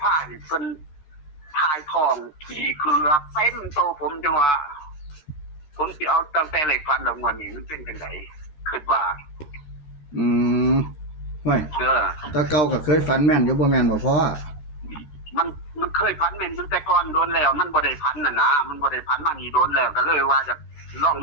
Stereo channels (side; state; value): right; late; 13 ms